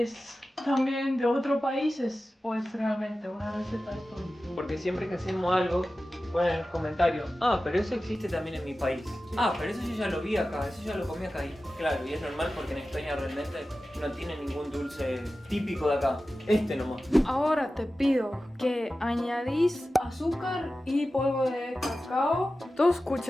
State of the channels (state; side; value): normal; both; correlation 0.94